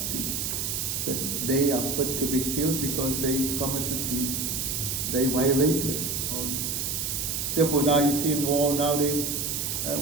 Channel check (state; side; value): noise; right; hiss, 1 dB below the sound